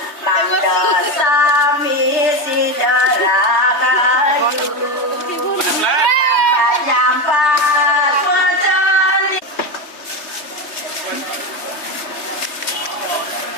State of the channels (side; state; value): right; late; 3.3 ms